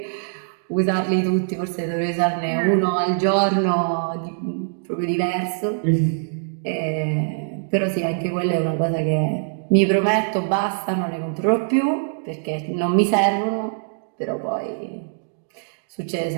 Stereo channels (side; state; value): left; silent; digital silence